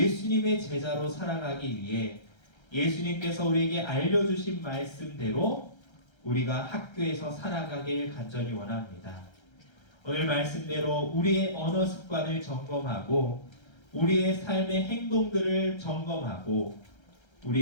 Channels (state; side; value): late; right; 1.3 ms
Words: 제자로 살아가기 위해 예수님께서 우리에게 알려주신 말씀대로 우리가 학교에서 살아가길 간절히 원합니다. 오늘 말씀대로 우리의 언어 습관을 점검하고 우리의 삶의 행동들을 점검하고